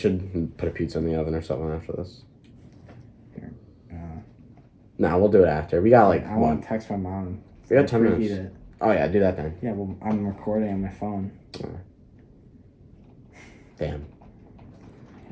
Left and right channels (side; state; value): both; identical; correlation 1.00